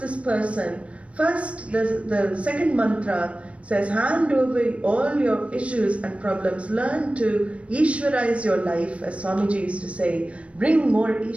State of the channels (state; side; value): late; left; 0.062 ms